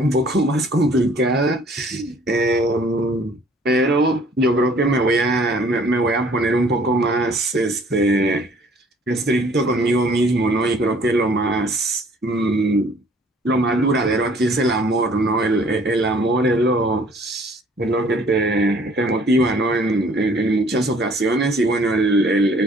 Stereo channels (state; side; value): normal; both; correlation 0.57